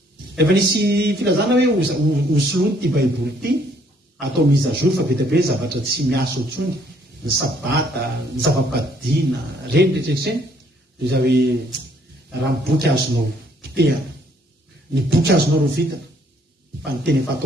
efa nisy filazana hoe hosoloany ty baiboly ity atao mise à jour fa be dia be zavatra tsy miasa otsony ny sabata ny zava-padina reny rehetraretreny dia za hoe raha ny boky azonao potehana ny boky azonao rovitana fa ny teny efa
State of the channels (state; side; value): normal; both; correlation 0.65